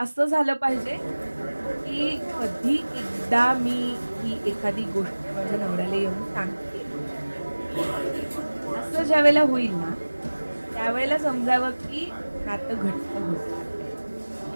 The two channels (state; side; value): inverted; both; correlation -1.00